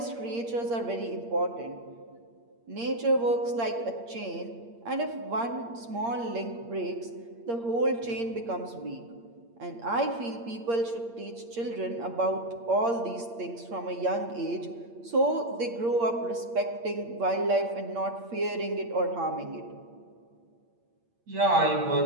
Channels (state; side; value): late; left; 8.6 ms